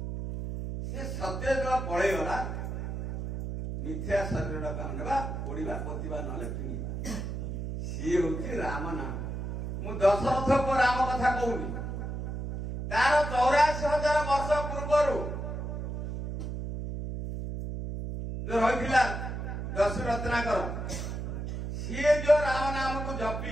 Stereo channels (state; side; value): noise; right; hum, 5 dB below the sound